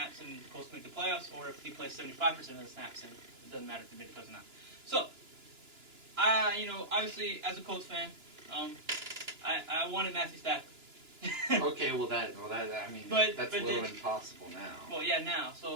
and the Colts make the playoffs, or if he plays 75% of the snaps and it doesn't matter if they make the playoffs or not. So, obviously as a Colts fan, I wanted Matthew Stafford. Okay, that's a little impossible now. Well, yeah, now.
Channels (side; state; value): left; late; 2.9 ms